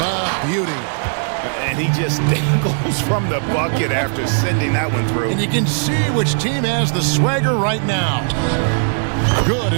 A beauty. And he just dangles from the bucket after sending that one through. And you can see which team has the swagger right now. Good,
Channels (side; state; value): left; silent; digital silence